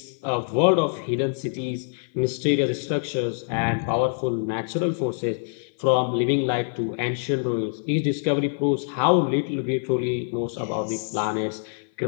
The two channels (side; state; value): right; silent; 57 dB below the other